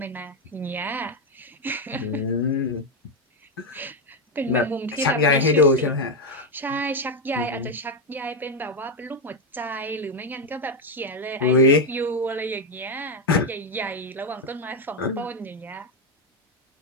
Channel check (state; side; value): normal; both; correlation 0.05